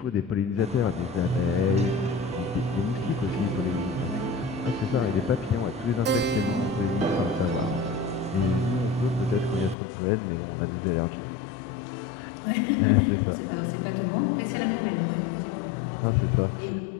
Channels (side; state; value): right; drops out; at 9.8 s